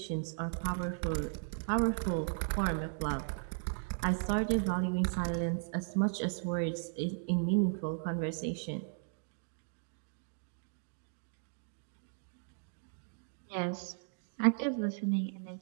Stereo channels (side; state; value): left; silent; digital silence